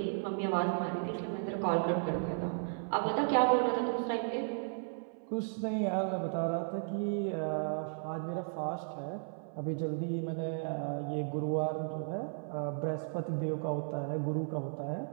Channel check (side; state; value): left; silent; 55 dB below the other